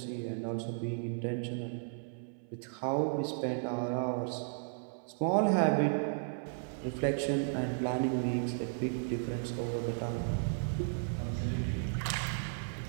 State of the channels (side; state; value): left; silent; 55 dB below the other